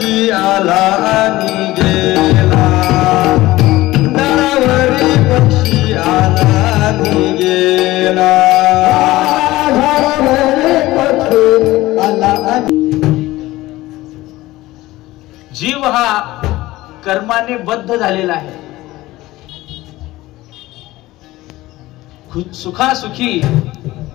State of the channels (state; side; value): quieter; right; 17.8 dB